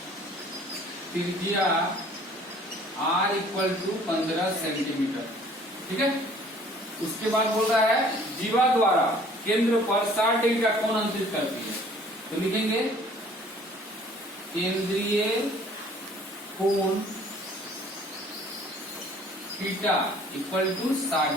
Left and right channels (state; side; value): normal; both; correlation 0.54